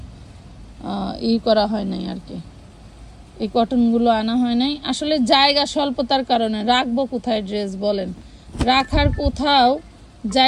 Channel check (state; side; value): identical; both; correlation 1.00